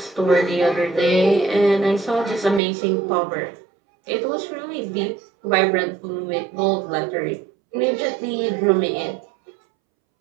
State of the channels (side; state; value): left; drops out; at 2.6 s